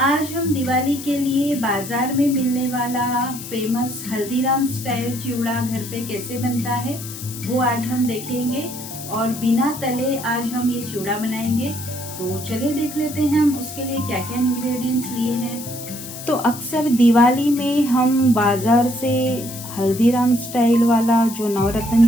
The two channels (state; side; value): noise; left; hiss, 11 dB below the sound